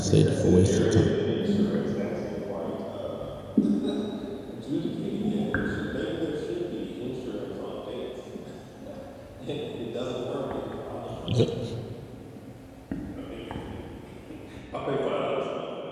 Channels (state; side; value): identical; both; correlation 1.00